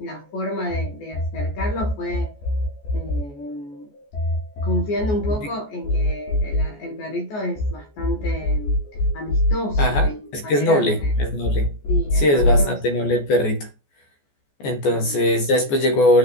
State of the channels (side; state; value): right; late; 14 ms